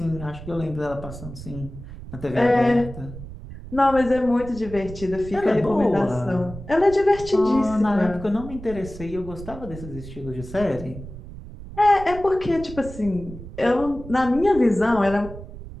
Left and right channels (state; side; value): noise; right; rumble, 13 dB below the sound